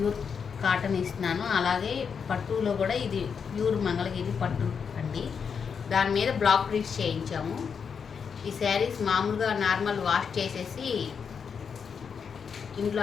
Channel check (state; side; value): quieter; right; 6.4 dB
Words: కాటన్ ఇస్తున్నానో అలాగే పట్టులో కూడా ఇది ప్యూర్ మంగళగిరి పట్టు అండి. దాని మీద బ్లాక్ ప్రింట్స్ చేయించాము. ఈ శారీస్ మామూలుగా నార్మల్ వాష్ చేసేసి ఇంట్లో